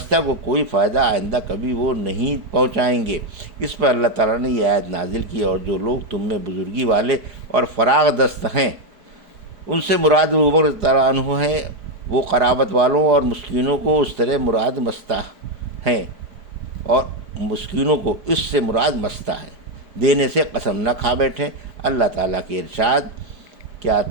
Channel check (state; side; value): late; left; 4.9 ms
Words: کو کوئی فائدہ آئندہ کبھی وہ نہیں پہنچائیں گے۔ اس پر اللہ تعالیٰ نے یہ آیت نازل کی، اور جو لوگ تم میں بزرگی والے اور فراغ دست ہیں ان سے مراد ابو بکر رضی اللہ عنہ ہیں، وہ قرابت والوں اور مسکینوں کو اس طرح مراد مستہ ہیں، اور مسکینوں کو اس سے مراد مستہ ہے، دینے سے قسم نہ کھا بیٹھیں۔ اللہ تعالیٰ کے ارشاد، کیا